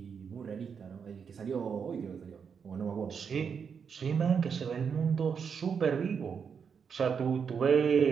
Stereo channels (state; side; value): quieter; left; 6.5 dB